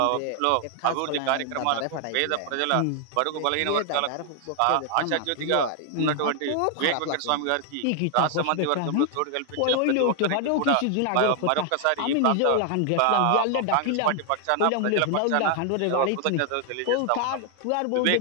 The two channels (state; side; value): different; both; correlation 0.00